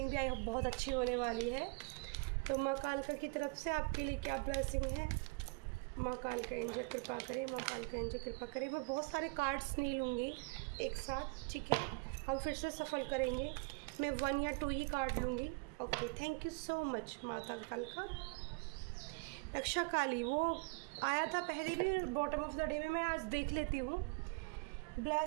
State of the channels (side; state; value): left; quieter; 31.1 dB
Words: भी बहुत अच्छी होने वाली है। तो माँ कालका की तरफ से आपके लिए क्या ब्लेसिंग है, माँ कालका एंजल कृपा करे, माँ कालका एंजल कृपा करे। मैं बहुत सारे कार्ड्स नहीं लूँगी एक साथ, ठीक है, हम फिर से सफल करेंगे। मैं 1 या 2 ही कार्ड लूँगी। Okay, thank you so much माता कालका। रक्षा काली वो आया था पहले भी बॉटम ऑफ द डे में, मैं आज देख लेती हूँ।